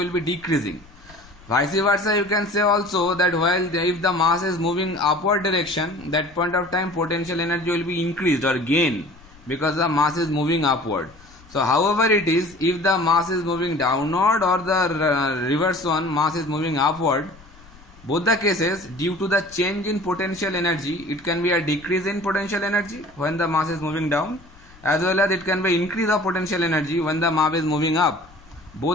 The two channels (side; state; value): left; noise; rumble, 24 dB below the sound